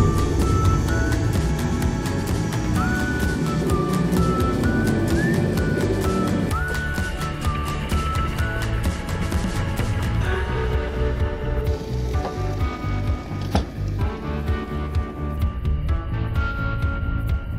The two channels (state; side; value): identical; both; correlation 1.00